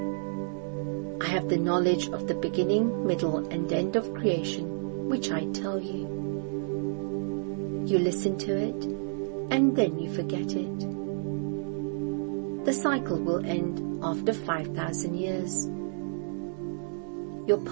I have the knowledge of the beginning, middle, and end of creation, which I tell you. You listen to it, and then you forget it. The cycle will end after 5,000 years. Your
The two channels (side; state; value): left; silent; digital silence